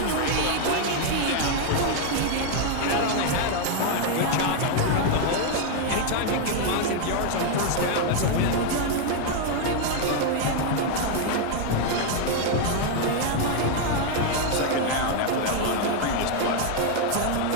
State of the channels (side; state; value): both; different; correlation 0.01